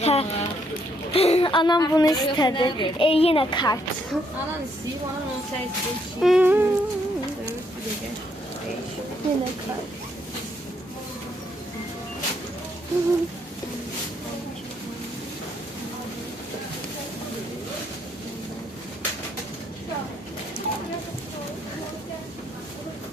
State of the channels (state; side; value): normal; both; correlation 0.72